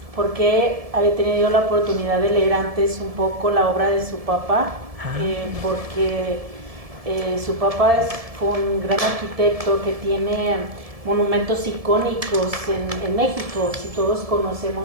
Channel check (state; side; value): late; left; 1.7 ms